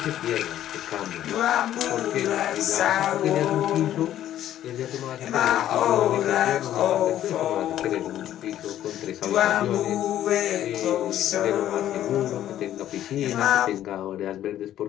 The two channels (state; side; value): quieter; right; 12.0 dB